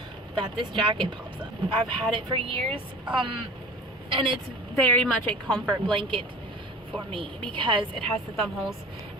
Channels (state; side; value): normal; both; correlation 0.39